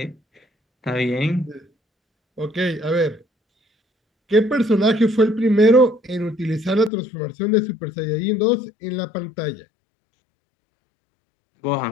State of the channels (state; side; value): drops out; right; at 6.9 s